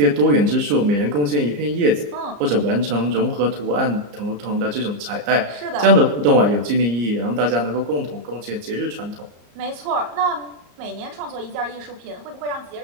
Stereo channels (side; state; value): left; late; 34 ms